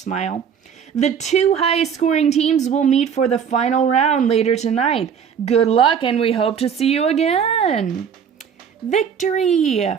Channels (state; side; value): quieter; left; 7.4 dB